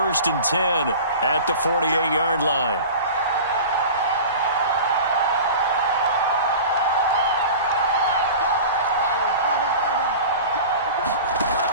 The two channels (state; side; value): inverted; both; correlation -0.36